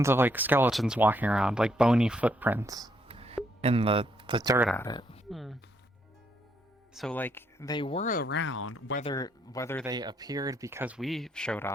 of like skeletons walking around, like bony footprints in the dirt at it. So like they were around, whether they appeared because we showed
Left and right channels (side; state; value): both; normal; correlation 0.73